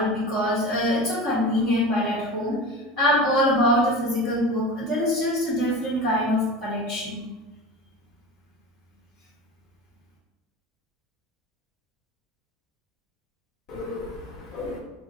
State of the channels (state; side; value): normal; both; correlation 0.31